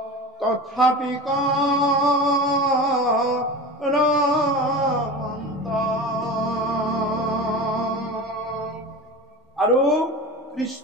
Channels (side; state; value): both; normal; correlation 0.31